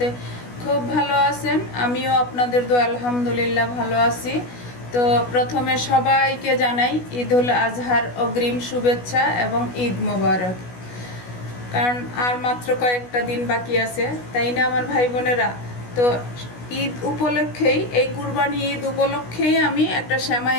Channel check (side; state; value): right; late; 16 ms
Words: খুব ভালো আছেন। আমিও আপনাদের দোয়া আলহামদুলিল্লাহ ভালো আছি। তো প্রথমে সবাইকে জানাই ঈদুল আজহার অগ্রিম শুভেচ্ছা এবং ঈদ মোবারক। কারণ আর মাত্র কয়েকটা দিন বাকি আছে, তাই না আমার ভাই বোনেরা? তো ঈদ উপলক্ষেই, এই কুরবানি ঈদ উপলক্ষেই আমি একটা